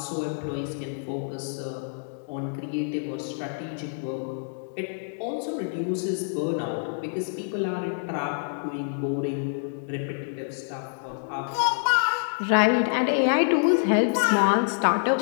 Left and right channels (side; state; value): right; silent; 60 dB below the other